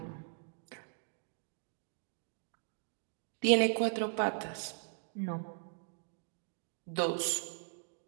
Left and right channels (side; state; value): left; silent; digital silence